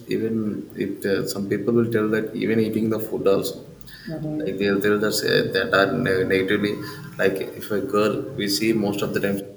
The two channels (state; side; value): identical; both; correlation 1.00